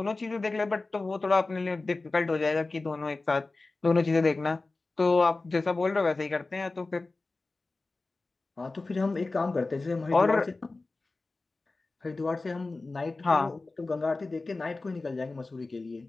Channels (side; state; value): right; quieter; 3.4 dB